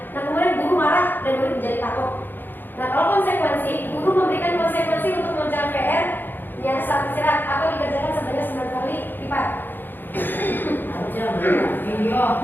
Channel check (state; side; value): late; right; 0.094 ms